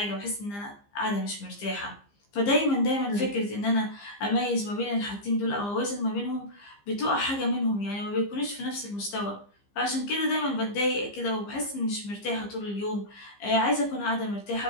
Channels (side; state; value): right; late; 15 ms